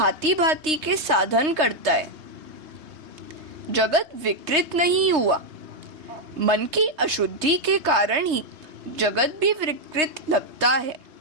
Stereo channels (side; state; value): left; late; 3.3 ms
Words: भांति के साधन करता है। जगत विकृत नहीं हुआ, मन की अशुद्धि के कारण ही जगत भी विकृत लगता है।